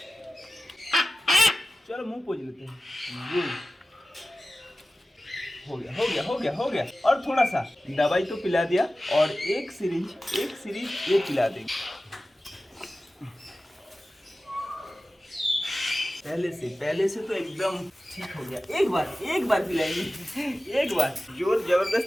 चलो मुंह पोंछ लेते हैं। हो गया। और थोड़ा सा दवाई तो पिला दिया और एक सिरिंज ये पिला देंगे। पहले से तो एकदम ठीक हो गया। एक बार पिलाएंगे, एक बार जोर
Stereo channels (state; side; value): normal; both; correlation 0.95